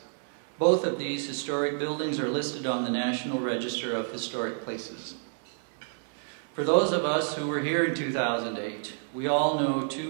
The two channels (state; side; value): silent; left; digital silence